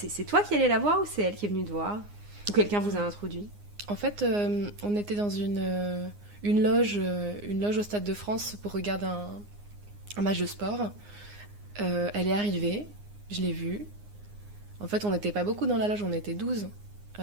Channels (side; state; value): left; late; 9.7 ms